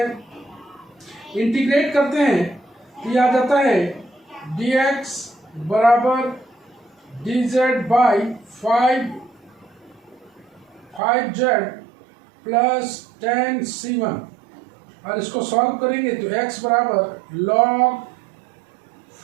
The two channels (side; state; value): left; drops out; at 11.0 s